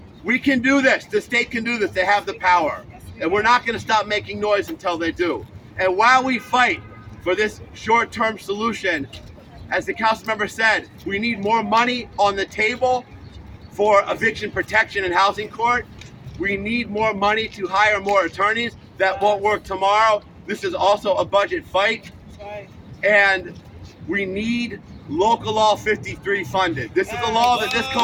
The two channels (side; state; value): both; identical; correlation 1.00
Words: We can do this. The state can do this. They have the power. And we're not going to stop making noise until they do. And while we fight for this short-term solution, as the council member said, we need more money on the table for eviction protection and housing court. We need more money to hire more attorneys. That won't work tomorrow. This is also a budget fight. And we need Local Law 53 funded. This is a law that this